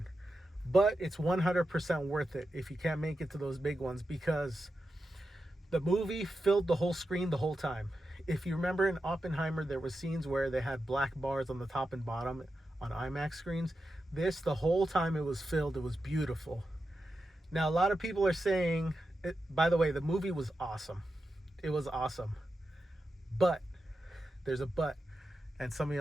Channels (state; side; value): normal; both; correlation 0.89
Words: But it's 100% worth it if you can't make it to those big ones because the movie filled the whole screen the whole time. If you remember in Oppenheimer, there were scenes where they had black bars on the top and bottom on IMAX screens. This, the whole time it was filled, it was beautiful. Now, a lot of people are saying, by the way, the movie was awesome. It was awesome. But, there's a but, and some of